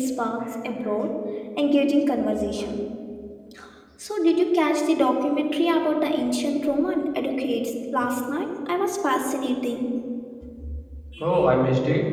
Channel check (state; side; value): identical; both; correlation 1.00